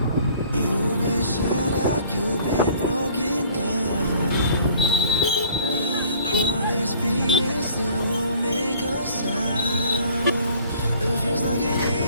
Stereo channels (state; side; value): inverted; both; correlation -0.54